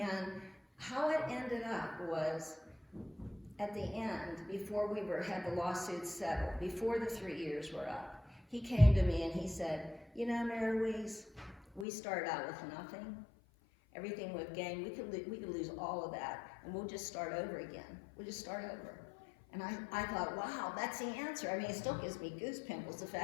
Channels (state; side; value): drops out; right; at 11.9 s